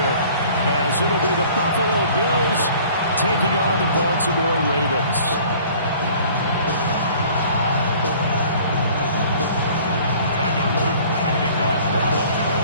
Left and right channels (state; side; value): inverted; both; correlation -0.51